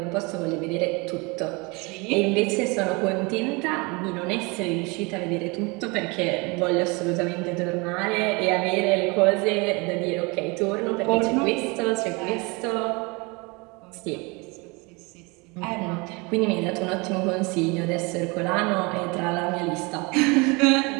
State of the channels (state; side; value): quieter; left; 27.7 dB